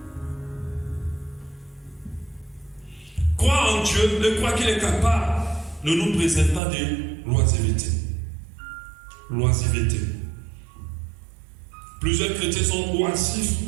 Croire en Dieu, de croire qu'il est capable, ne nous préserve pas de l'oisiveté. L'oisiveté. Plusieurs chrétiens sont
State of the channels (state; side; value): drops out; left; at 6.6 s